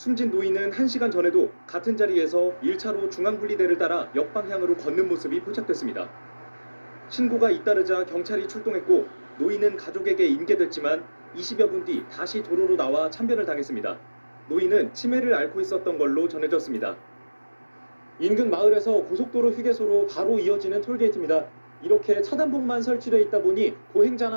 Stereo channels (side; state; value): both; inverted; correlation -1.00